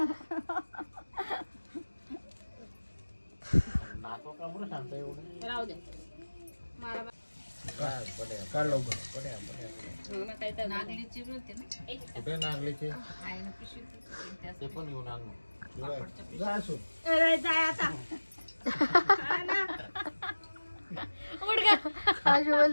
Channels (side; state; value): both; inverted; correlation -1.00